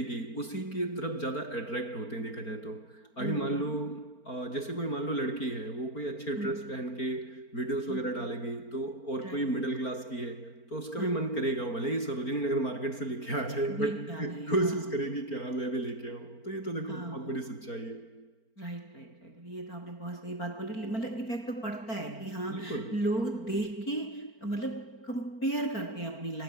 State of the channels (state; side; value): late; right; 4.4 ms